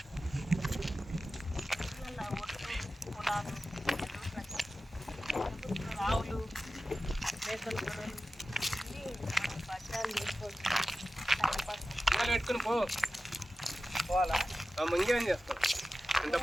రావులు మేకలు గొర్రెలు బట్టాలు చేసుకోవచ్చు. పెట్టుకుని పోవాలా ఇంకేం చేస్తాం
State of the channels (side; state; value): both; normal; correlation 0.94